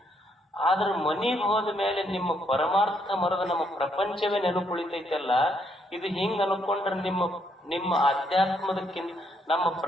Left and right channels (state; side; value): normal; both; correlation 0.73